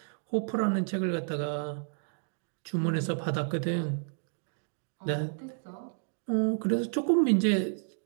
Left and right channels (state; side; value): silent; left; digital silence